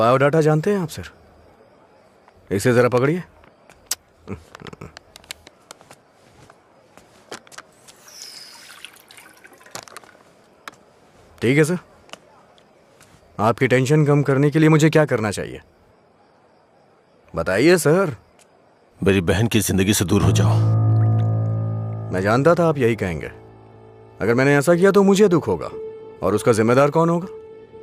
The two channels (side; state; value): both; identical; correlation 1.00